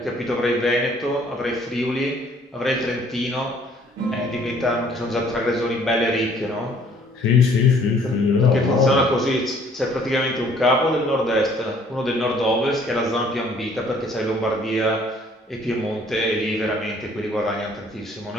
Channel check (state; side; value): normal; both; correlation 0.59